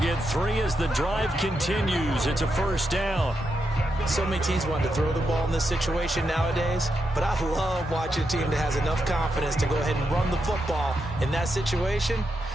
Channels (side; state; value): both; normal; correlation 0.84